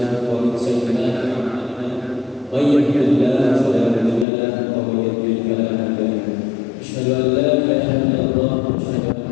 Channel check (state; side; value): drops out; right; at 4.2 s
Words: wa min sayyi'ati a'malina. May yahdihillahu fala mudilla lahu wa may yudlil fala hadiya lahu. Asyhadu an la ilaha illallah wa asyhadu